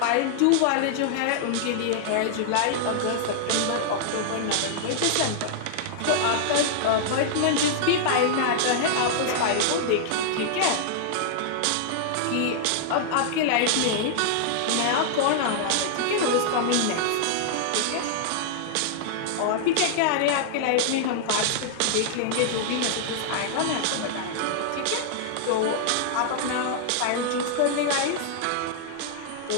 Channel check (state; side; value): different; both; correlation -0.01